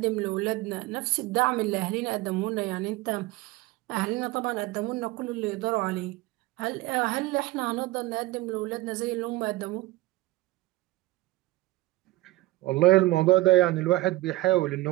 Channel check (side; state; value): left; quieter; 18.9 dB